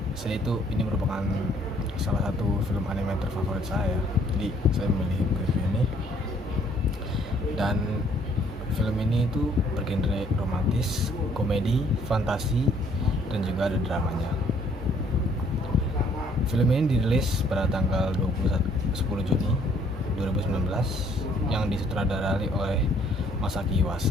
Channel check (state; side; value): normal; both; correlation 0.63